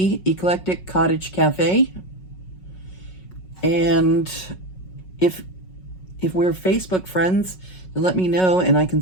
Eclectic Cottage Cafe. And if we're Facebook friends, then let me know and I can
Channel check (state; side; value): late; right; 5.4 ms